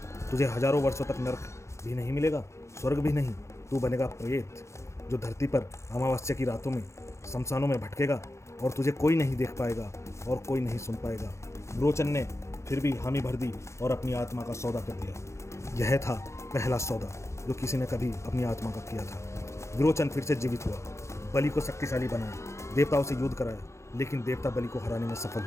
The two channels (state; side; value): late; right; 0.14 ms